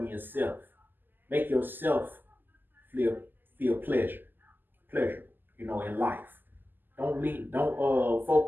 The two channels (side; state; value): left; late; 0.091 ms